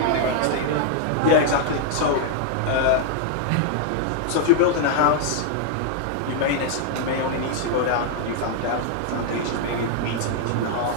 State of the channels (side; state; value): both; different; correlation -0.01